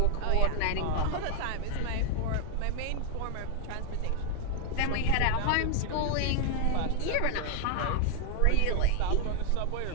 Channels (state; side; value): different; both; correlation 0.00